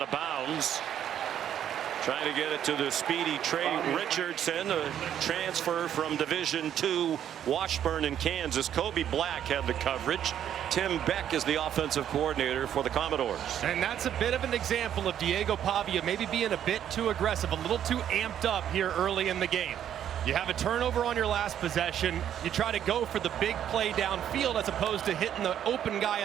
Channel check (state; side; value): quieter; left; 10.1 dB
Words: of bounds. Trying to get it to the speedy Trey Richardson, a transfer from Division II Washburn in Kansas. Kobe Black had the coverage. Tim Beck is the offensive coordinator for the Commodores. And that's a bit of an example of Diego Pavia maybe being a bit too aggressive, a little too amped up here early in the game. You have a turnover on your last possession. You try to go for the big play downfield as opposed to hitting the open guy